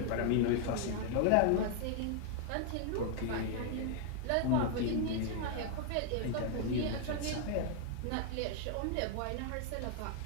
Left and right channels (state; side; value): different; both; correlation 0.00